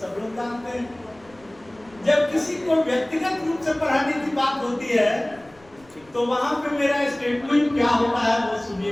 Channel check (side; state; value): left; noise; rumble, 28 dB below the sound